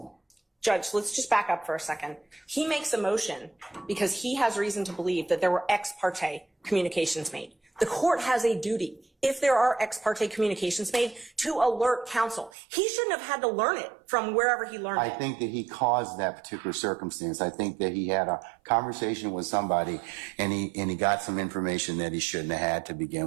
Judge, let's just back up for a second. He makes a motion because he has reason to believe that there were ex parte communications made. The court has a duty, if there are ex parte communications made, to alert counsel. He shouldn't have had to learn it from wherever he learned it. I think that he caused that particular circumstance. I think that he had a conversation with somebody and he got some information that he shouldn't have had to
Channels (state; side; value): drops out; left; at 12.5 s